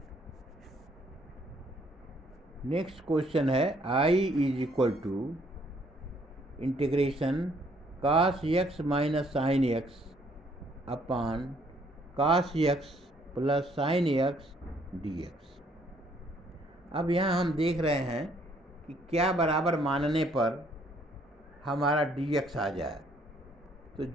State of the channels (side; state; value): both; normal; correlation 0.65